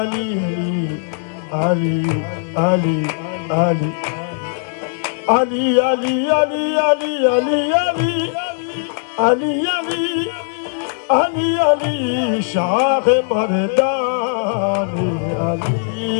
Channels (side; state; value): right; silent; 67 dB below the other